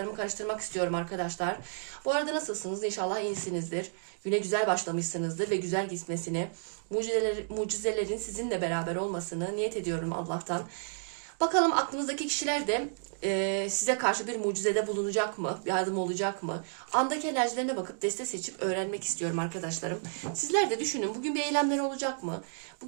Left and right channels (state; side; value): silent; left; digital silence